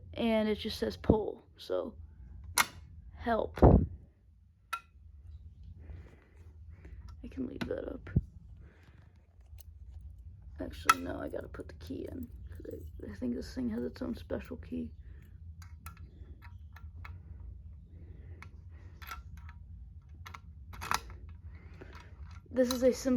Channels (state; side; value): identical; both; correlation 1.00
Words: and it just says pull, so help. I can leave that up. Actually, no, I gotta put the key in, because I think this thing has its own special key. This is a